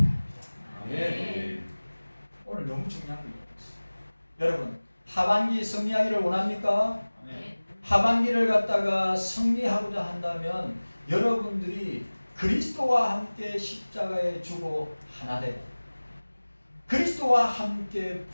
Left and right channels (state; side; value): inverted; both; correlation -1.00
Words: 네. 오늘 너무 중요한 거 있어요. 여러분, 하반기 승리하기를 원합니까? 네. 하반기를 갖다가 승리하고자 한다면 여러분들이 그리스도와 함께 십자가에 죽어 하나 되고 그리스도와 함께